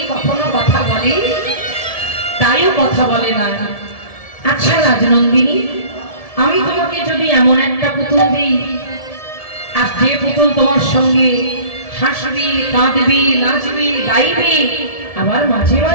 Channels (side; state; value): right; late; 1.7 ms